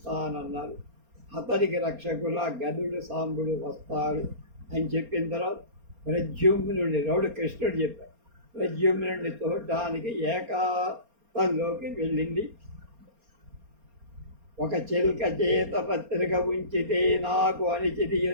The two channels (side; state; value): left; late; 4.3 ms